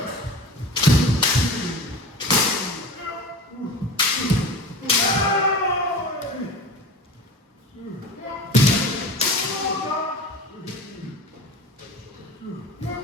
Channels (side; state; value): both; normal; correlation 0.34